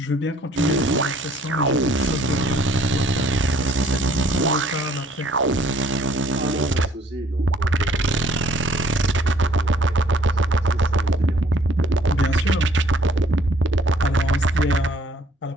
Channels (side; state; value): both; normal; correlation 0.60